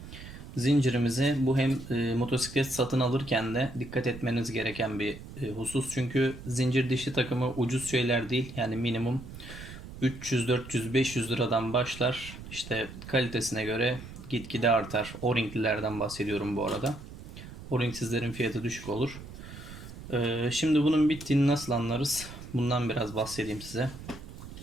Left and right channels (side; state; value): right; noise; rumble, 13 dB below the sound